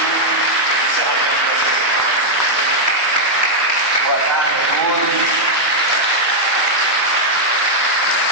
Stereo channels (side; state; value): both; normal; correlation -0.02